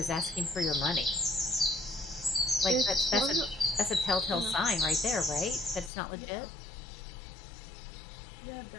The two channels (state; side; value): drops out; right; at 5.9 s